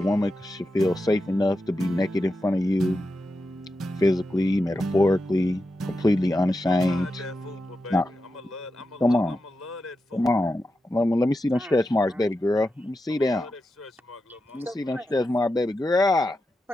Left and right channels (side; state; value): both; normal; correlation 0.89